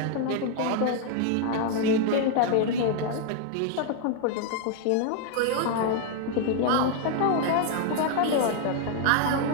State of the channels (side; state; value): both; different; correlation 0.00